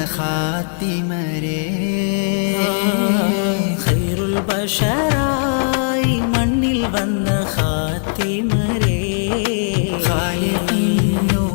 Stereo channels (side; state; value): right; silent; digital silence